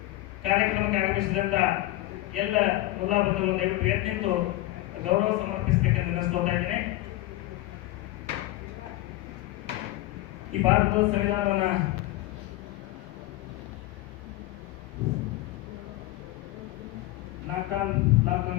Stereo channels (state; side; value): quieter; right; 17.3 dB